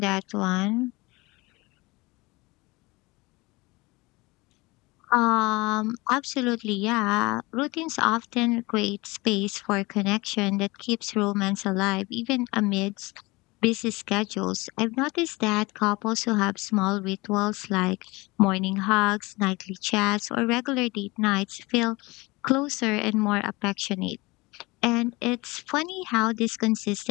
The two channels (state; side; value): quieter; right; 23.4 dB